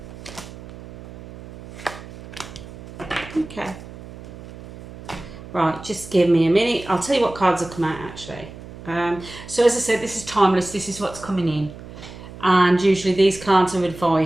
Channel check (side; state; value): right; noise; hum, 15 dB below the sound